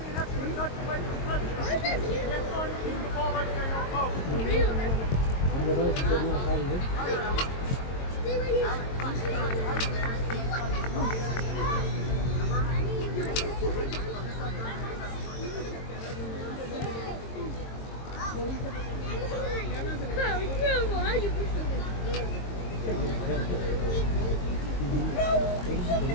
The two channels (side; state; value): right; late; 22 ms